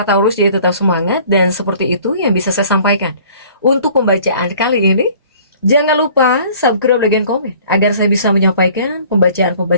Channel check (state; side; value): inverted; both; correlation -0.52